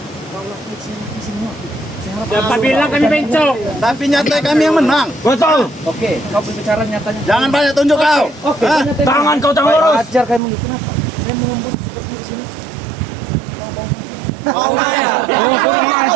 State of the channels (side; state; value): left; drops out; at 10.4 s